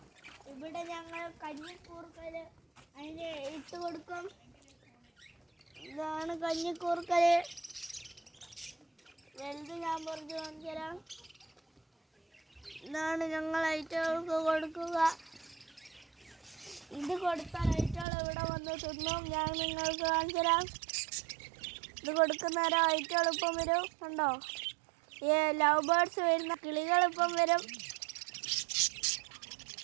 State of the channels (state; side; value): drops out; left; at 18.1 s